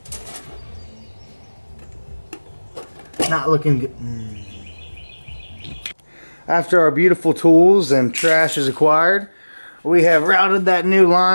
Not looking good. After our beautiful tools and trash is acquired, we have routed that new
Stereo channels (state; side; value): inverted; both; correlation -1.00